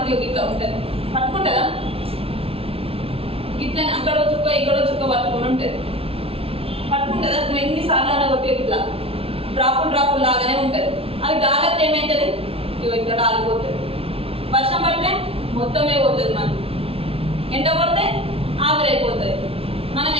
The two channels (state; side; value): late; left; 0.27 ms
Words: ఇట్లా ఉంటుంది, పట్టుకుంటుందా? ఇట్లా అక్కడో చుక్క ఇక్కడో చుక్క పట్టుకొని ఉంటుంది, పట్టుకుంటుందా? నువ్వు ఎన్నిసార్లు అలా కొట్టి ఇట్లా డ్రాపులు లాగానే ఉంటుంది. అది గాలత్తి ఏమవుతుంది? ఇగో ఇక్కడ ఆగిపోతుంది. వర్షం పడితే మొత్తమే పోతుంది, మనం ఎండ కొడితే ఆవిరైపోతుంది. మనం